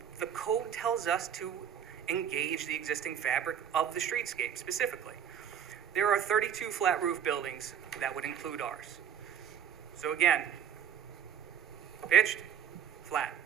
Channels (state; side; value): quieter; left; 8.5 dB